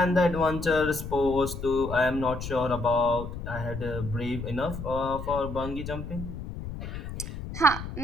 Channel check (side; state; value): left; noise; rumble, 8 dB below the sound